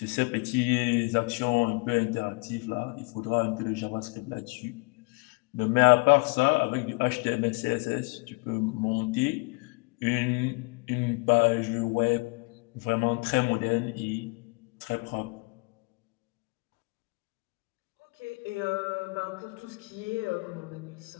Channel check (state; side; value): quieter; right; 30.1 dB